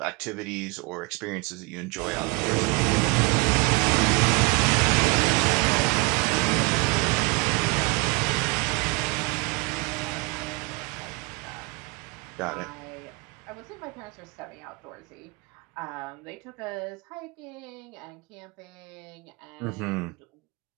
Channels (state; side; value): quieter; left; 28.8 dB